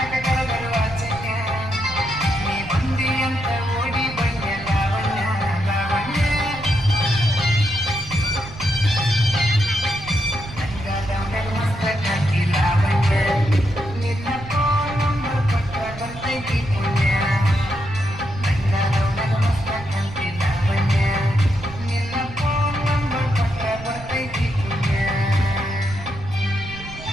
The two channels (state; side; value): noise; right; rumble, 14 dB below the sound